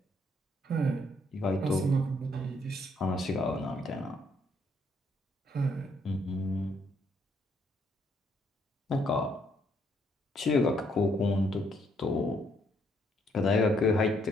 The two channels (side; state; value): both; normal; correlation 0.70